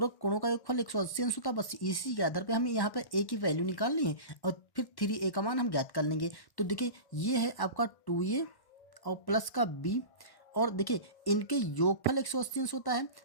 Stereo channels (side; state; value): right; late; 1.1 ms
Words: कोणों का योगफल 180 अंश होता है। बस इसी के आधार पे हमें यहाँ पे ए की वैल्यू निकालनी है और फिर 3a का मान हम ज्ञात कर लेंगे। तो देखिए, ये है आपका 2a और प्लस का b, और देखिए इनके योगफल 180 अंश होता है,